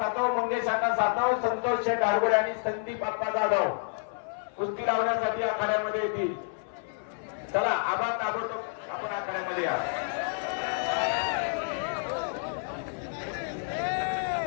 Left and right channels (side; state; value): right; silent; 58 dB below the other